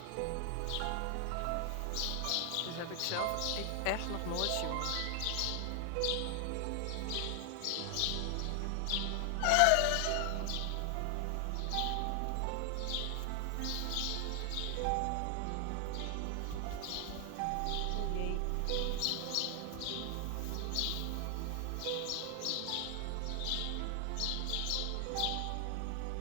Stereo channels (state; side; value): different; both; correlation 0.00